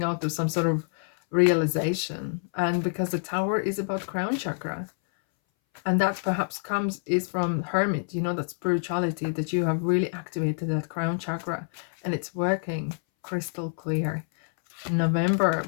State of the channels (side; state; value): right; silent; 60 dB below the other